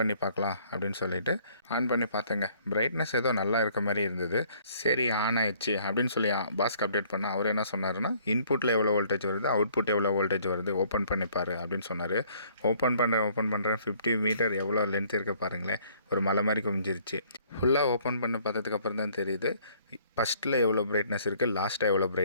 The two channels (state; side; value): inverted; both; correlation -0.61